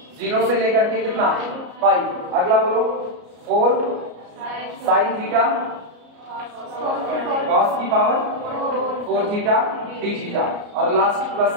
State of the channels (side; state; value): left; late; 33 ms